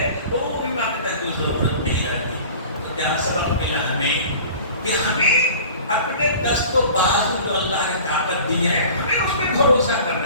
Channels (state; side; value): inverted; both; correlation -0.43